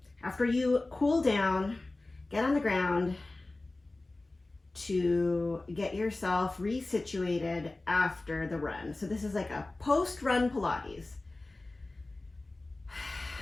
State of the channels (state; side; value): quieter; right; 3.0 dB